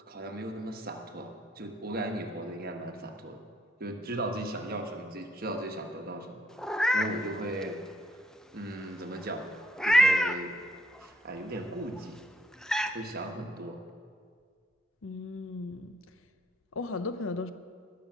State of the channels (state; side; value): normal; both; correlation 0.67